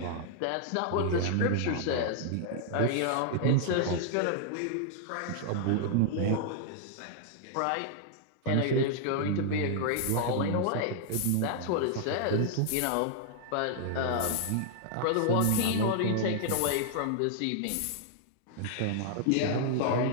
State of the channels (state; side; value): different; both; correlation -0.01